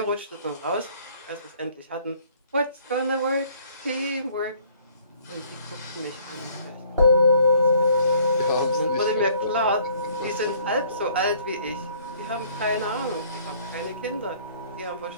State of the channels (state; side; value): inverted; both; correlation -0.58